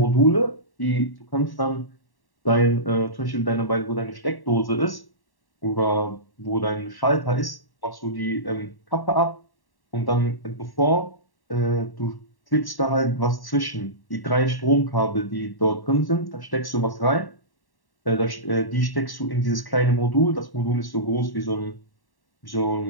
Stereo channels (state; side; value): late; right; 1.1 ms